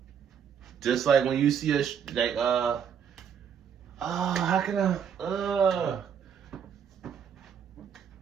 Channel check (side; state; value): left; quieter; 7.8 dB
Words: when you see how can I?